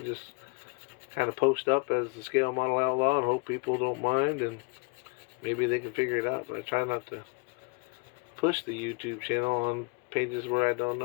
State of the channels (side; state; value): right; quieter; 32.3 dB